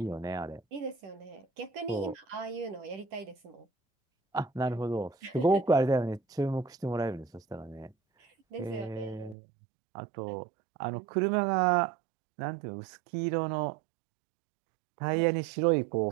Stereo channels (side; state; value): left; drops out; at 9.3 s